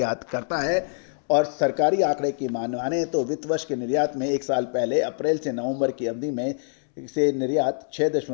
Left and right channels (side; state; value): right; silent; 62 dB below the other